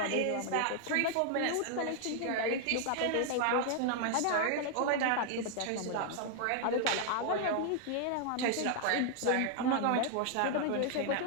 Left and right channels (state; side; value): different; both; correlation 0.00